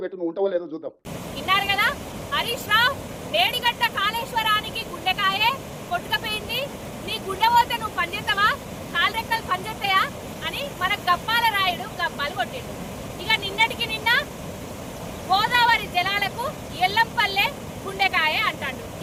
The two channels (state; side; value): identical; both; correlation 1.00